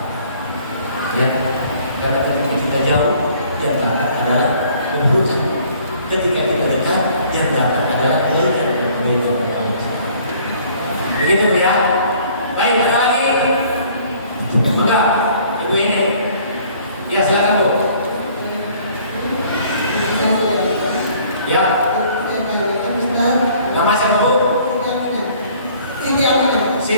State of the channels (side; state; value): both; inverted; correlation -0.56